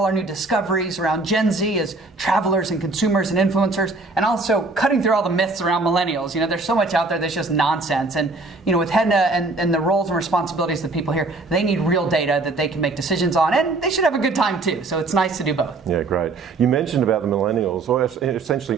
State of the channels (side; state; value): left; quieter; 3.4 dB